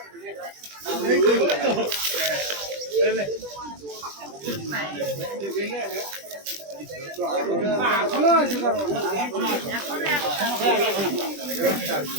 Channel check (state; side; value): late; left; 20 ms